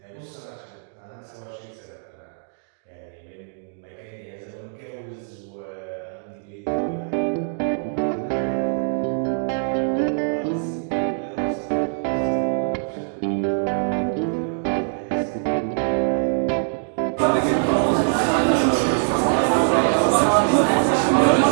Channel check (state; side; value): silent; left; digital silence